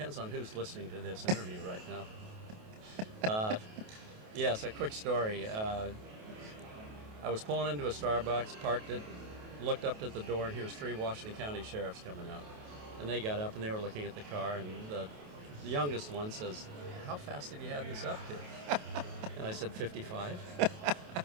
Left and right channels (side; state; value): left; late; 28 ms